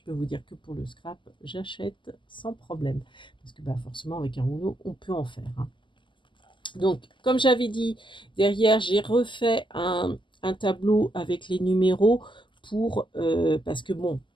peux vous dire que pour le scrap, j'achète sans problème. Parce que bah, forcément, avec un rouleau, on peut en faire, hein. Donc, comme j'avais dit, derrière, j'ai refait un tableau avec les numéros parce que bon,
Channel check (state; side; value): late; right; 0.24 ms